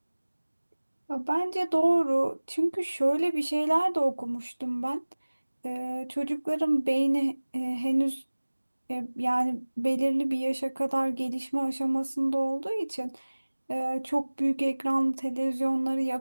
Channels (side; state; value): both; inverted; correlation -1.00